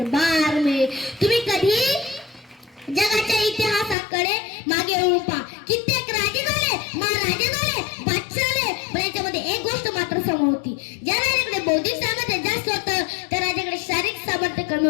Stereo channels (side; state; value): right; drops out; at 4.0 s